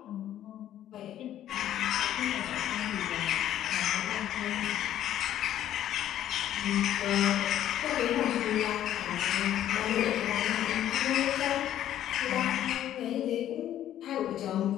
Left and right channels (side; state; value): right; quieter; 11.7 dB